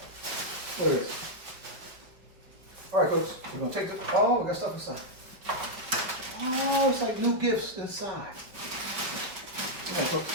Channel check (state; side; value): late; left; 4.9 ms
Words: look at this. All right, cooks, we're gonna take this. Oh, we got stuff inside. Oh, it's like new gifts inside. Come on, cooks.